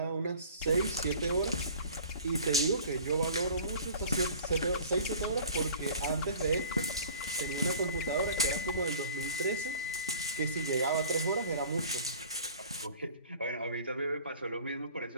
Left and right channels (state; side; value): inverted; both; correlation -0.46